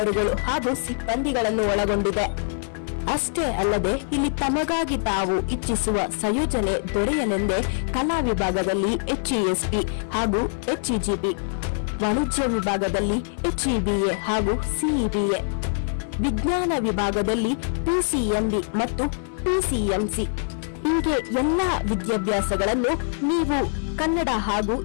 ಹಾಗೂ ಸಿಬ್ಬಂದಿಗಳನ್ನು ಒಳಗೊಂಡಿದೆ. ಅಷ್ಟೇ ಅಲ್ಲದೆ ಇಲ್ಲಿ ತಮಗಾಗಿ ತಾವು ಇಚ್ಛಿಸುವ ಸಂಯೋಜನೆ ದೊರೆಯಲೆಂದೇ ಕಲಾ ವಿಭಾಗದಲ್ಲಿ HESP ಹಾಗೂ HEGP, ವಾಣಿಜ್ಯ ವಿಭಾಗದಲ್ಲಿ HEBA ಹಾಗೂ CEBA, ವಿಜ್ಞಾನ ವಿಭಾಗದಲ್ಲಿ PCMB ಮತ್ತು PCMC ಹೀಗೆ ಎಲ್ಲ ವಿದ್ಯಾಭ್ಯಾಸಗಳನ್ನು ನೀವು ಕನ್ನಡ ಹಾಗೂ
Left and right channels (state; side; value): silent; right; 63 dB below the other